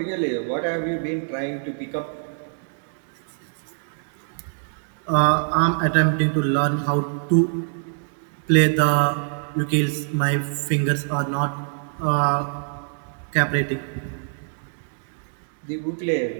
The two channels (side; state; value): left; silent; 62 dB below the other